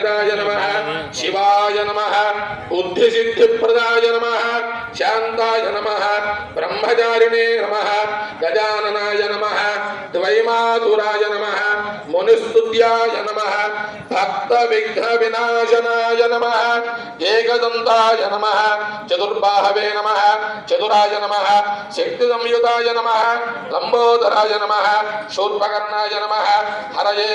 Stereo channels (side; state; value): both; identical; correlation 1.00